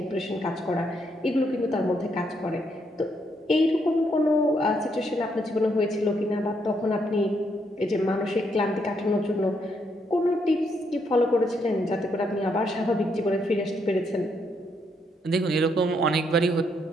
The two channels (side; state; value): both; normal; correlation 0.75